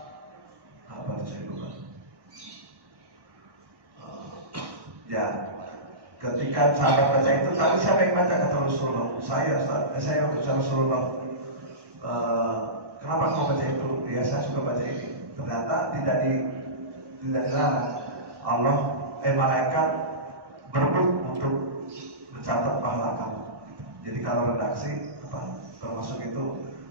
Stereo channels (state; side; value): late; left; 1.1 ms